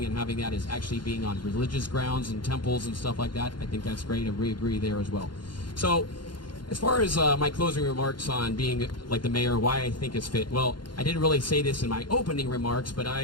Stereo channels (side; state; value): right; late; 0.71 ms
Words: and having that is actually being on religious grounds and temples and stuff like that. I think that's great, and we agree there as well. So as far as my closing remarks on being like the mayor, why I think it's fit. Well, I didn't really say this in my opening remarks, but